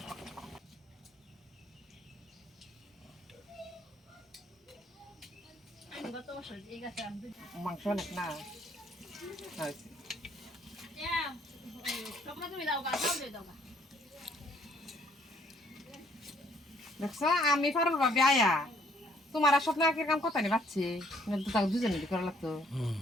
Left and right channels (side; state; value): both; normal; correlation 0.65